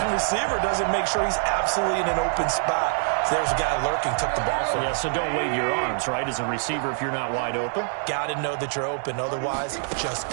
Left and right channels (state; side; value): silent; left; digital silence